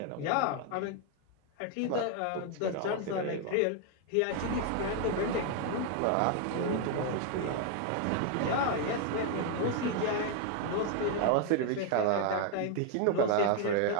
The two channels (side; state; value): both; different; correlation 0.00